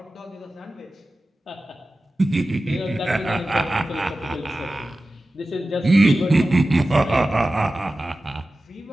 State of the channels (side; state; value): both; normal; correlation 0.95